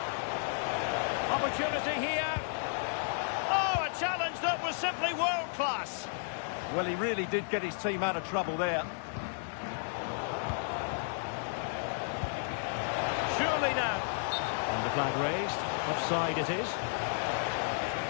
Opportunity here. Oh, a challenge that was simply world-class. Well, he really did get his team out of trouble there. flag raised. Offside it is.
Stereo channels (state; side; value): silent; right; digital silence